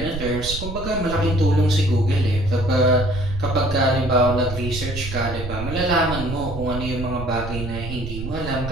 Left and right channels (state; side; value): noise; right; rumble, 8 dB below the sound